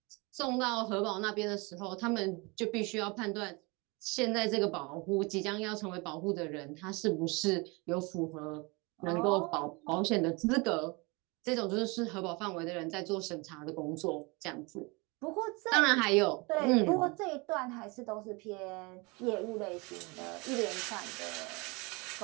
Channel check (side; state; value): left; quieter; 27.5 dB